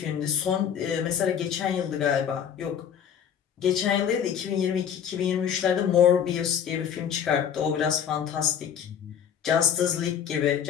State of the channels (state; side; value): quieter; right; 8.5 dB